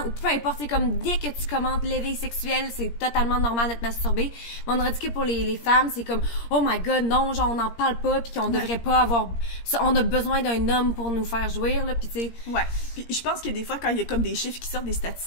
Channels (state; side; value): late; right; 17 ms